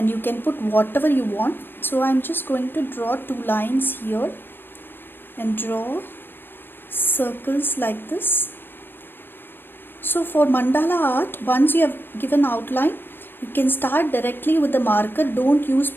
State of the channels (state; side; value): late; right; 0.10 ms